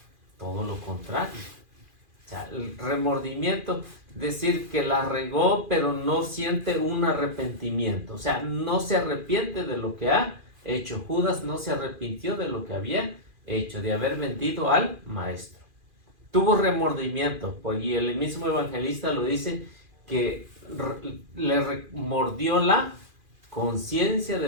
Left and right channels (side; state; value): left; late; 2.5 ms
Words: Todo lo contrario. O sea, el remordimiento, decir que la regó, pero no siente un arrepentimiento. O sea, no se arrepiente de lo que ha hecho. Judas no se arrepintió de lo que había hecho, de haber mentido al maestro. Tuvo remordimiento, y el mismo evangelista lo dice, que le remordió la conciencia